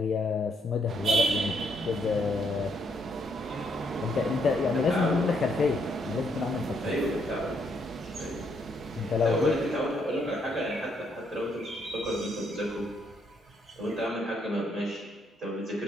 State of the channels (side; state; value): both; normal; correlation 0.73